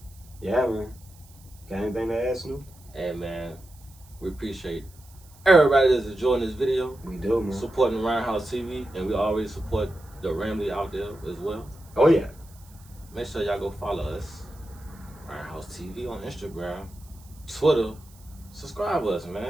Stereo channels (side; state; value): right; noise; hiss, 26 dB below the sound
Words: yeah, man. Got anything to add, Snoop? Hey, man, we appreciate everybody that's enjoying this video. We do, man. Supporting Roundhouse TV, and we always support the Ramley out there as well. Oh, yeah. Make sure y'all go follow us, Roundhouse TV on Instagram, Twitter. Subscribe us,